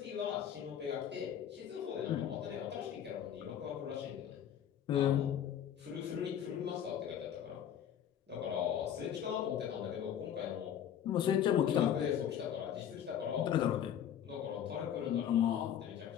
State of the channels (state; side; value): quieter; right; 9.6 dB